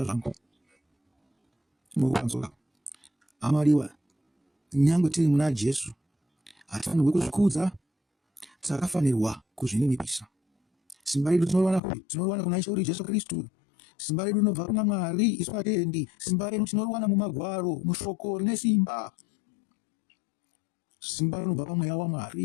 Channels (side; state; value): right; drops out; at 11.8 s